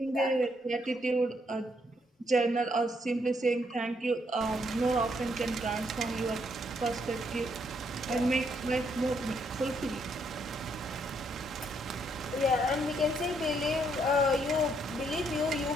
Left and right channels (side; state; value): both; normal; correlation 0.73